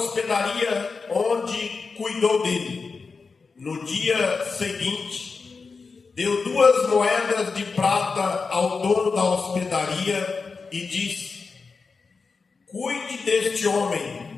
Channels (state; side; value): quieter; right; 4.7 dB